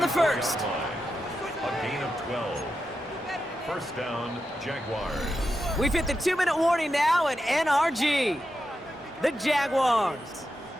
first. A gain of 12. First down, Jaguars. We've hit the 2-minute warning now at NRG. The Jaguars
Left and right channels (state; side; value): normal; both; correlation 0.88